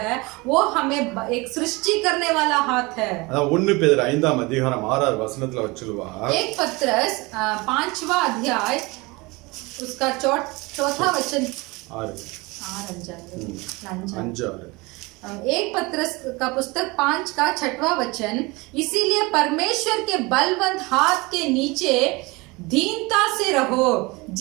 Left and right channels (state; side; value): quieter; left; 24.5 dB